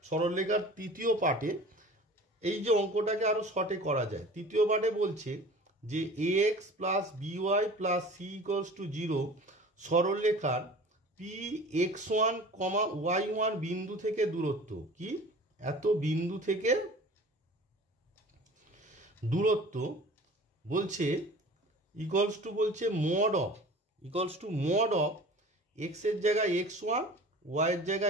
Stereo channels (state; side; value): normal; both; correlation 0.42